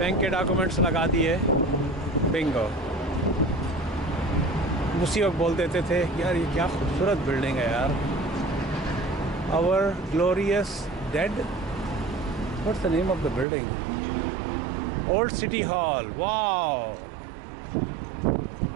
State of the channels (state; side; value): drops out; left; at 13.5 s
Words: के डॉक्यूमेंट्स लगा दिए, बिंगो। उसी वक्त बोल देते थे यार ये क्या खूबसूरत बिल्डिंग है यार, our glorious dead, what's the name of the building? Old city hall. Wow,